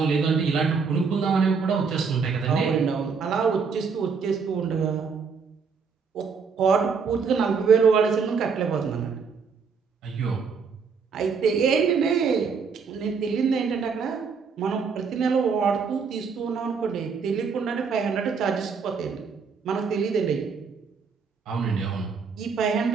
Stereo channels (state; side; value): quieter; left; 5.6 dB